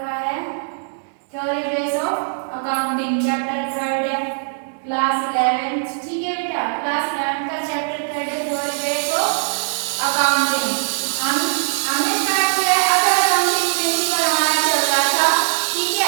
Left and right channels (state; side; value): silent; left; 65 dB below the other